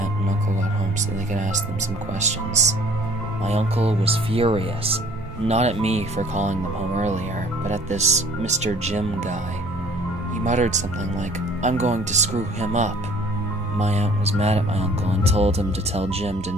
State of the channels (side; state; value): both; normal; correlation 0.54